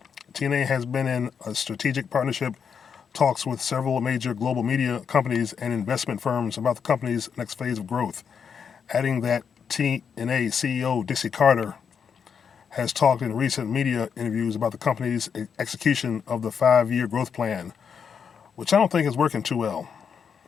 TNA has been in a strategic partnership talks with several major global media companies and investment firms about the company's next phase of growth, adding that TNA CEO Dixie Carter has talked in recent media interviews about the company's execution of the 5-year growth plan, which I don't think is working too well.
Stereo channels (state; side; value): quieter; right; 6.8 dB